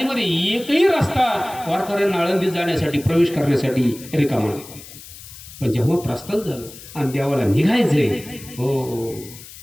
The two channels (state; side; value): noise; left; hiss, 17 dB below the sound